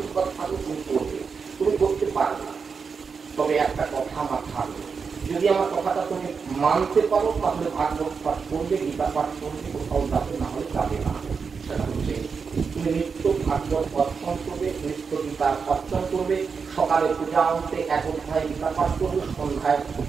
থাকলে তুমি করবে, তুমি করতে পারবে। তবে একটা কথা আমার থাকবে, যদি আমার কথাটা তুমি মানতে পারো তাহলে ভাগবত পাঠ করবে, গীতা পাঠ করবে, কোথাও যাবে, না হলে যাবে না। সেটা হচ্ছে তুমি নিত্য ভাগবত অর্জন করবে, নিত্য গীতা অর্জন করবে, সকালে পূজা অন্তে এক অধ্যায় গীতা পাঠ করবে, সন্ধ্যায়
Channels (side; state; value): left; quieter; 5.5 dB